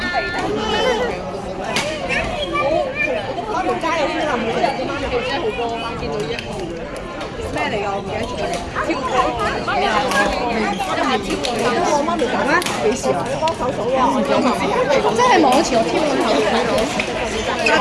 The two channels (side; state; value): both; identical; correlation 1.00